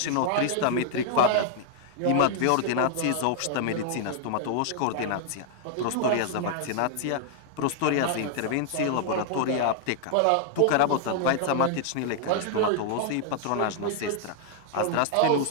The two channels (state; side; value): different; both; correlation 0.00